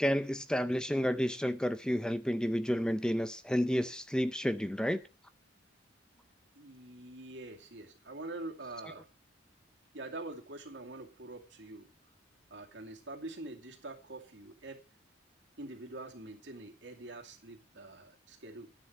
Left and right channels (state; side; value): normal; both; correlation 0.90